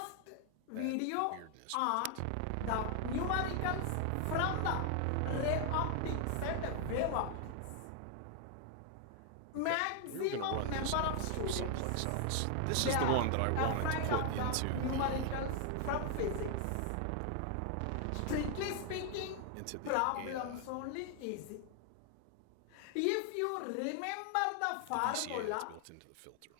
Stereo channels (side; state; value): both; different; correlation 0.00